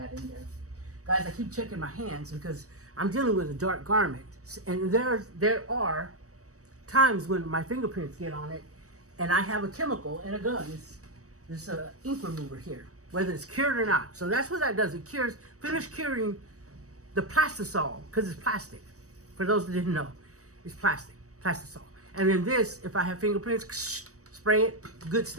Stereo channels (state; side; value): late; left; 0.66 ms